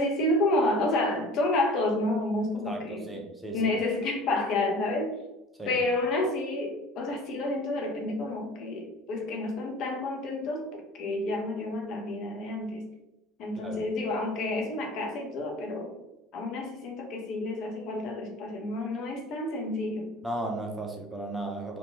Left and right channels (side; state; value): both; normal; correlation 0.43